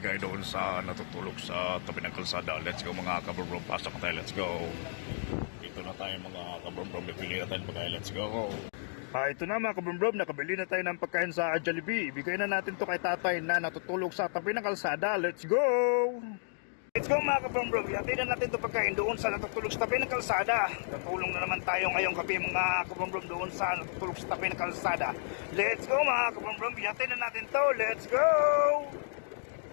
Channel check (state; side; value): silent; right; digital silence